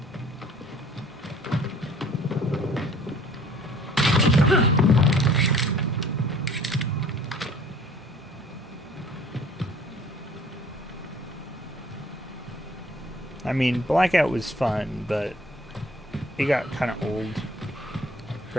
I mean, Blackout was fun, but it got kind of old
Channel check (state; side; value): normal; both; correlation 0.54